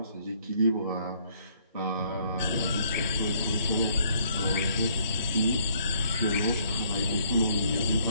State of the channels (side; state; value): both; inverted; correlation -0.64